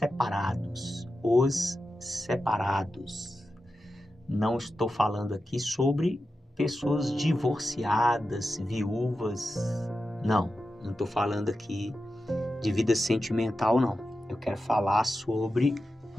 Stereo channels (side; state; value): both; normal; correlation 0.91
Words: Os separados. Não estou falando aqui sobre pessoas divorciadas, viúvas. Não estou falando aqui de vida sentimental, não. Eu quero falar sobre